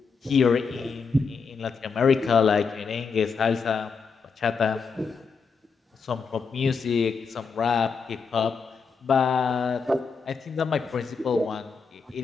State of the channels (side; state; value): right; quieter; 5.3 dB